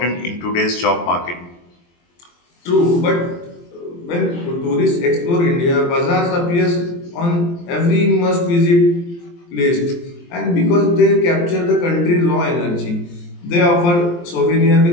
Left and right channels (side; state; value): right; late; 23 ms